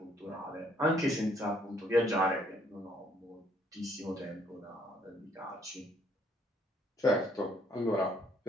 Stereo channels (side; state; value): both; normal; correlation 0.66